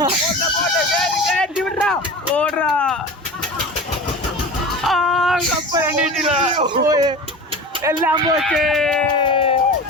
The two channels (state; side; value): normal; both; correlation 0.33